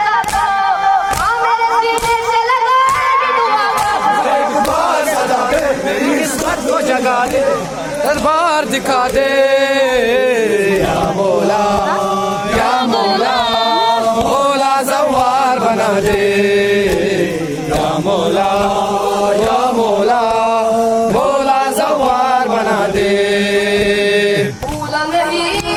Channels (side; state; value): both; identical; correlation 1.00